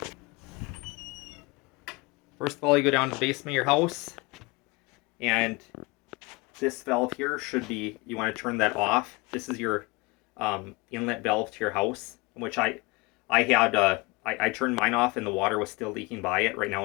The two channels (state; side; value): quieter; right; 25.2 dB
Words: First of all, you go down to the basement of your house, and this valve here should be, you want to turn that off. This is your inlet valve to your house, which I turned mine off and the water was still leaking by it. Right